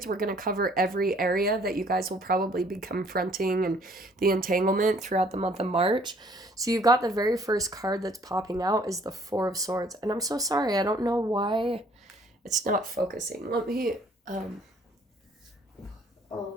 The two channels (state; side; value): normal; both; correlation 0.60